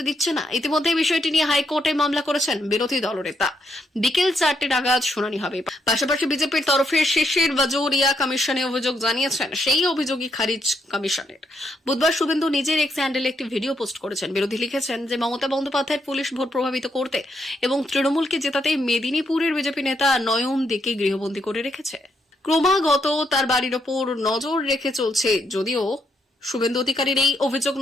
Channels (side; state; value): both; normal; correlation 0.77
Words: দিচ্ছে না। ইতিমধ্যে বিষয়টি নিয়ে হাইকোর্টে মামলা করেছেন বিরোধী দলনেতা। বিকেল 4টে নাগাদ শুনানি হবে। পাশাপাশি বিজেপির তরফে শিশির বাজৌরিয়া কমিশনে অভিযোগ জানিয়েছেন, সেই অভিযোগই খারিজ কমিশনের। বুধবার শুভেন্দু নিজের এক্স হ্যান্ডেলে একটি ভিডিও পোস্ট করেছেন। বিরোধী লিখেছেন যে মমতা বন্দ্যোপাধ্যায়ের পুলিশ ভোট প্রভাবিত করতে এবং তৃণমূলকে জেতাতে মেদিনীপুরের বিজেপি নেতা নয়ন দিকে গৃহবন্দী করে রেখেছে। ক্রমাগত তার বাড়ির ওপর নজর রেখে চলছে। যদিও শুভেন্দু অধিকারীর এই অভিযোগ